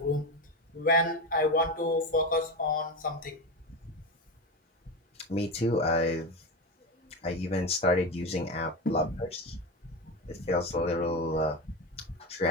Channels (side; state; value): both; normal; correlation 0.19